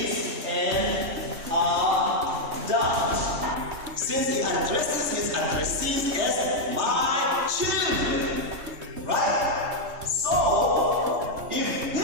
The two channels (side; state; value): left; late; 3.3 ms